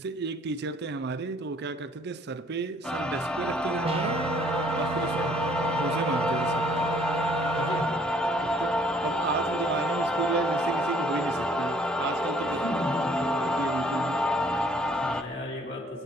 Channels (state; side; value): normal; both; correlation 0.61